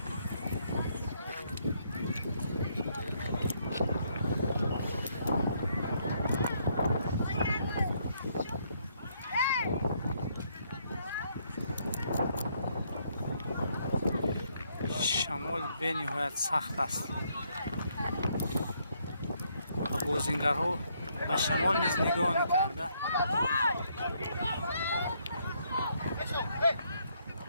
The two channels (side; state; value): both; inverted; correlation -0.72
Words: شمال به نهایت سخت است و بازیگرها به شمال نیز نگاه نکرده.